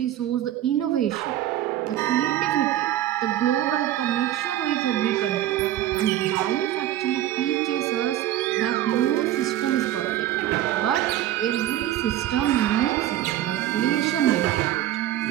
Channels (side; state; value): left; quieter; 13.1 dB